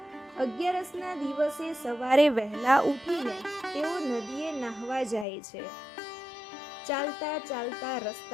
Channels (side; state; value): right; drops out; at 5.2 s